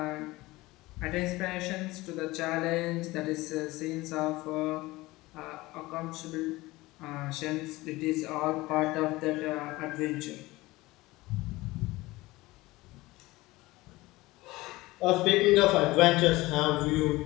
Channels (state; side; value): quieter; right; 20.0 dB